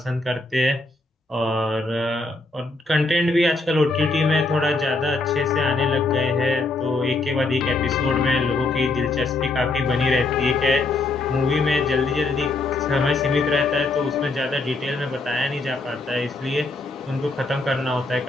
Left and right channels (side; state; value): right; quieter; 3.2 dB